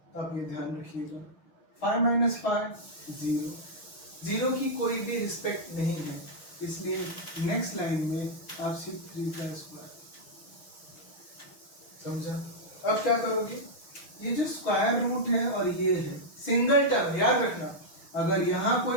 तो आप ये ध्यान रखिएगा। 5 माइनस 5 0, 0 की कोई भी रिस्पेक्ट नहीं है, इसलिए नेक्स्ट लाइन में आप सिर्फ 3 का स्क्वायर। समझा? अब क्या करोगे, ये जो स्क्वायर रूट है और ये है सिंगल टर्म, याद रखना। अगर यहाँ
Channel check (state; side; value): late; right; 6.2 ms